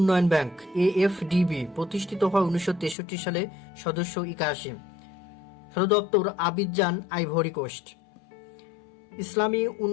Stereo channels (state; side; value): drops out; right; at 3.0 s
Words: ব্যাংক এএফডিবি প্রতিষ্ঠিত হয় 1963 সালে, সদস্য 81, সদর দপ্তর আবিদজান, আইভরি কোস্ট। ইসলামী